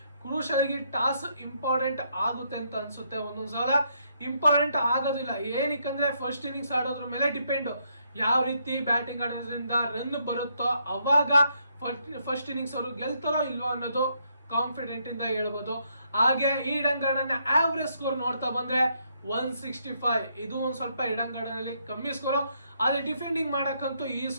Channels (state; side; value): inverted; both; correlation -0.74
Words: ಕ್ರೂಷಲ್ ಆಗಿ ಟಾಸ್ ಇಂಪಾರ್ಟೆಂಟ್ ಆಗುತ್ತೆ ಅಂತ ಅನ್ಸುತ್ತೆ. ಒಂದೊಂದ್ಸಲ ಇಂಪಾರ್ಟೆಂಟ್ ಆಗೋದಿಲ್ಲ, ಏನಕ್ಕಂದ್ರೆ ಫಸ್ಟ್ ಇನ್ನಿಂಗ್ಸ್ ಆಡೋದ್ರ ಮೇಲೆ ಡಿಪೆಂಡ್. ಯಾವ ರೀತಿ ಬ್ಯಾಟಿಂಗ್ ಆಡೋದ್ರಿಂದ ರನ್ ಬರುತ್ತೋ ಅವಾಗ ಫಸ್ಟ್ ಇನ್ನಿಂಗ್ಸ್ ಅವರು ಗೆಲ್ತಾರೋ ಇಲ್ವೋ ಅನ್ನೋದು ಕಾನ್ಫಿಡೆಂಟ್ ಇಂದ ಹೇಳ್ಬೋದು. ಹಾಗೆ ಈ ಈಡನ್ ಗಾರ್ಡನ್ ಆವರೇಜ್ ಸ್ಕೋರ್ ನೋಡ್ತಾ ಬಂದ್ರೆ 165. ಇದು ಒಂದ್ ಸ್ವಲ್ಪ ಈಡನ್ ಗಾರ್ಡನ್ ಅಲ್ಲಿ ಕಮ್ಮಿ ಸ್ಕೋರ್. ಆದ್ರೆ ಡಿಫೆಂಡಿಂಗ್ ಮಾಡಕ್ಕಂತೂ ಈ